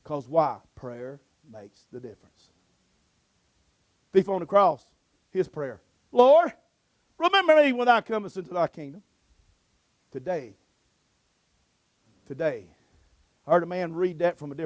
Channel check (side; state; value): both; identical; correlation 1.00